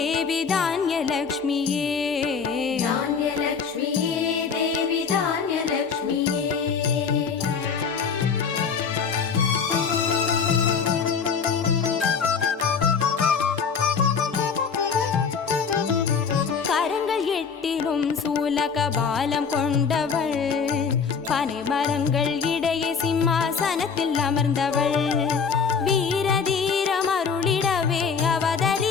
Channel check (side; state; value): right; quieter; 6.0 dB